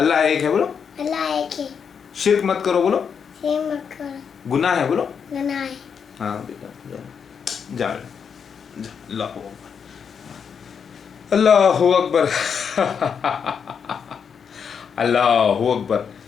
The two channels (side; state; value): right; quieter; 6.8 dB